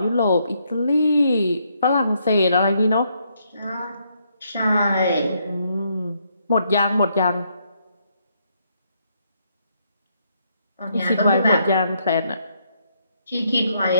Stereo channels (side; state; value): both; inverted; correlation -0.74